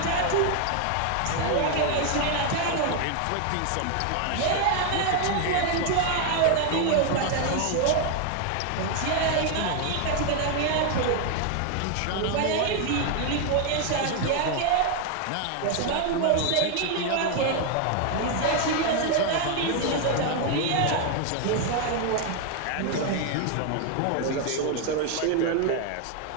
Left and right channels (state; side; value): different; both; correlation 0.01